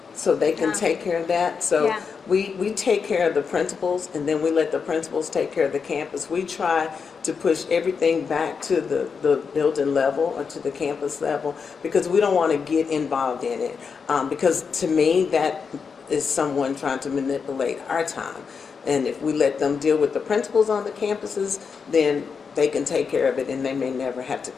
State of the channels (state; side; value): quieter; right; 5.7 dB